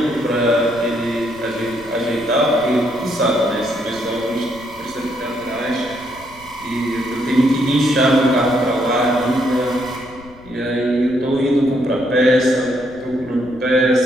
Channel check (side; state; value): left; noise; rumble, 23 dB below the sound